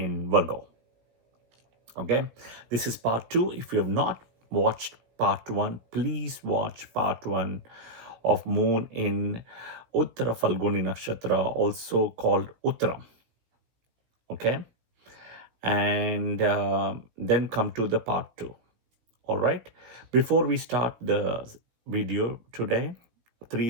Virgo. Okay, this is part 2. If you have not watched part 1, please watch part 1 of moon in Uttara Phalguni Nakshatra, also called Uttaram. Okay, and then come to the part 2. All right, before we start the video today, 3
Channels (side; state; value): left; late; 17 ms